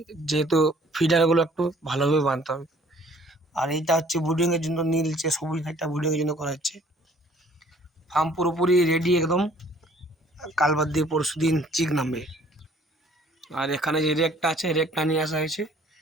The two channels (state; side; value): normal; both; correlation 0.57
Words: যেহেতু ফিডারগুলো একটু ভালোভাবে বাঁধতে হবে। আর এইটা হচ্ছে বুডিংয়ের জন্য, নীলচে সবুজ একটা বুডিংয়ের জন্য করা হচ্ছে। ফার্ম পুরোপুরি রেডি একদম, কাল বাদ দিয়ে পরশু দিন চিক নামবে। আর এখানে যে রেকটা আছে, রেকটা নিয়ে আসা হয়েছে,